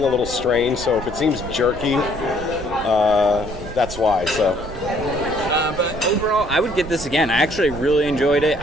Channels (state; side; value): noise; right; rumble, 12 dB below the sound